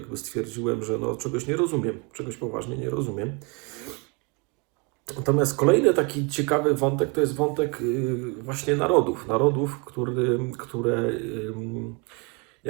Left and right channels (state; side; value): quieter; left; 30.8 dB